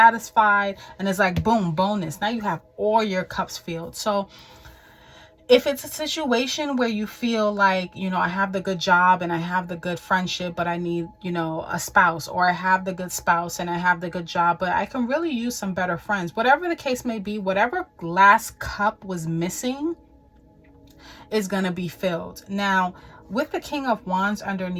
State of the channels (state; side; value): identical; both; correlation 1.00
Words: and it's like boom, bonus. Now you have all your cups filled. So if it's a situation where you feel like, you know, I have the good job and I have the good friendship, but I need, you know, a spouse, or I have the good spouse and I have the good job, but I can really use some better friends, whatever the case may be, whatever last cup was missing is going to be filled. Now, with the King of Wands